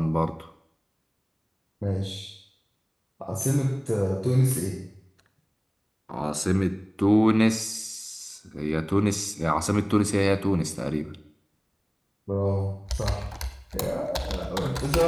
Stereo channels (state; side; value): identical; both; correlation 1.00